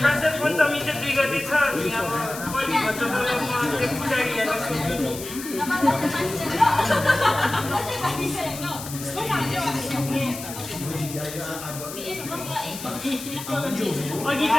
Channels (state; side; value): noise; left; hiss, 11 dB below the sound